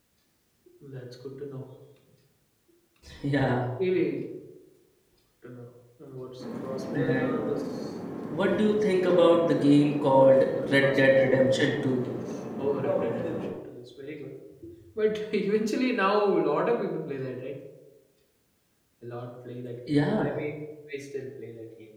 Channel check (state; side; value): identical; both; correlation 1.00